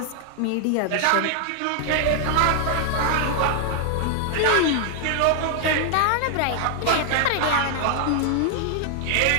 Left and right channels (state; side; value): different; both; correlation 0.00